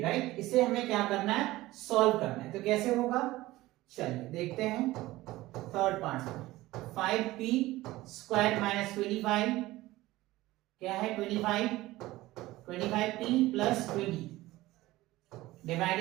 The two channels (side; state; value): left; quieter; 17.8 dB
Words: right. इसे हमें क्या करना है सॉल्व करना है। तो कैसे होगा चलिए देखते हैं। थर्ड पार्ट में 5p स्क्वायर माइनस 25 क्या है 25p प्लस 20